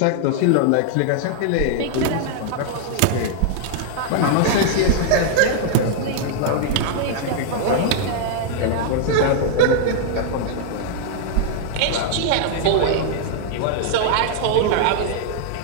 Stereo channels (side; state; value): both; different; correlation -0.01